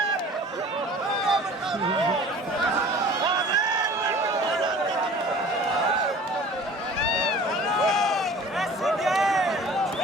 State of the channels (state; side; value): normal; both; correlation 0.45